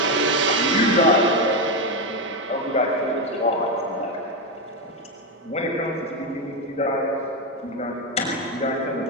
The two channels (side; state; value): both; normal; correlation 0.09